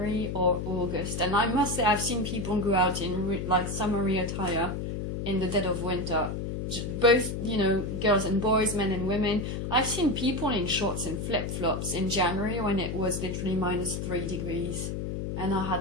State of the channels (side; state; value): left; noise; hum, 4 dB below the sound